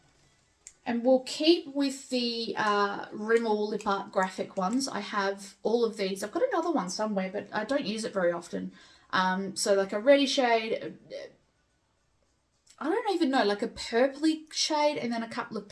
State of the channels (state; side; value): identical; both; correlation 1.00